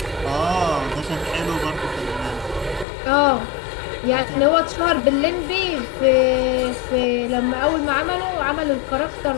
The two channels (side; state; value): right; drops out; at 2.9 s